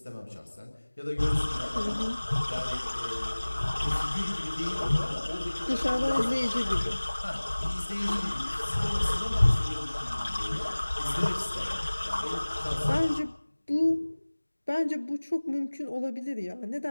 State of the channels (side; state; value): both; inverted; correlation -1.00